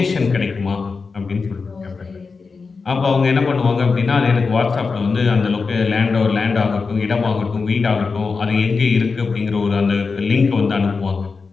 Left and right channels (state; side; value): quieter; right; 4.7 dB